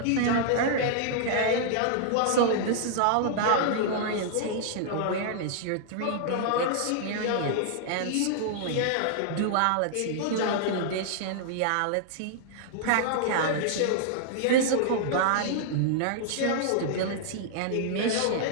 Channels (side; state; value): both; different; correlation -0.01